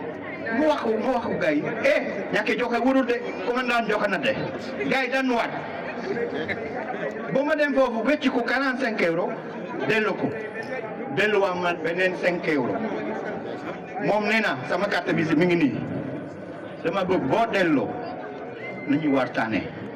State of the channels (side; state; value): both; identical; correlation 1.00